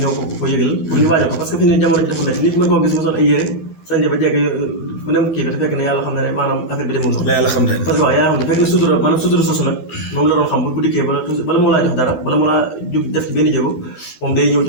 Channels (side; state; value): right; late; 12 ms